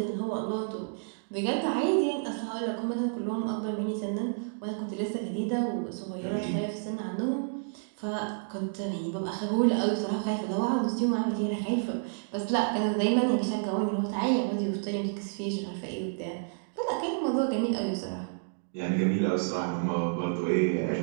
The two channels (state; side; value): silent; left; digital silence